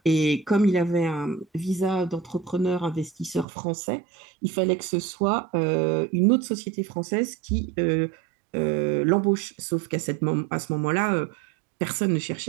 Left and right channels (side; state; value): left; drops out; at 3.5 s